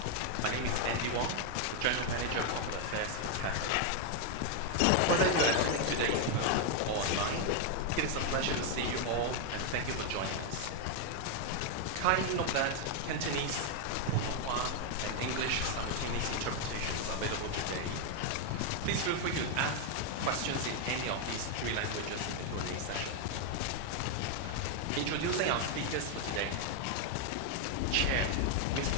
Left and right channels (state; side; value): different; both; correlation 0.01